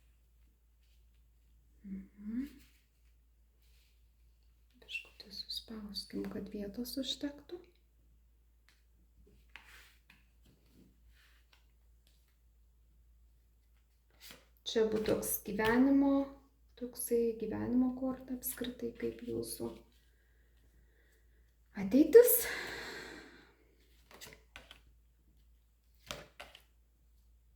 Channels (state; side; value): identical; both; correlation 1.00